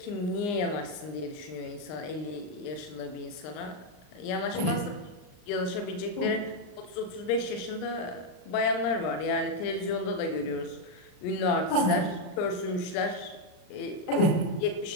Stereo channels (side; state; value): right; late; 39 ms